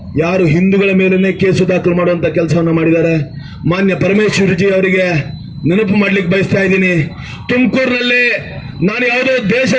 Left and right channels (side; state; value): both; identical; correlation 1.00